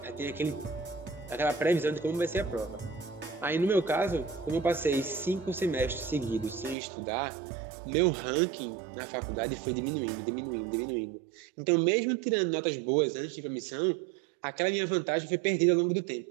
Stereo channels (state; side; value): drops out; left; at 6.8 s